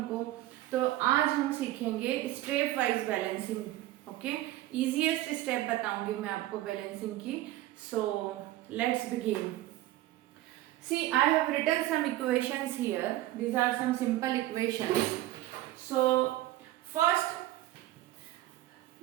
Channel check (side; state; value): left; quieter; 15.6 dB